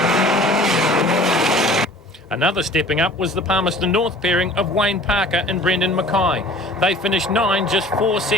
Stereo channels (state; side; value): normal; both; correlation 0.47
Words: Another stepping up was the Palmerston North pairing of Wayne Parker and Brendan Mackay. They finished 9, just 4